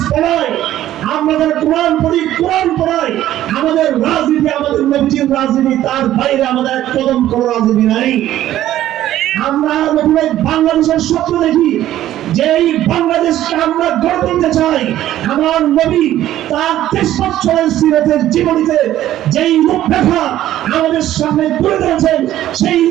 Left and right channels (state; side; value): quieter; left; 13.1 dB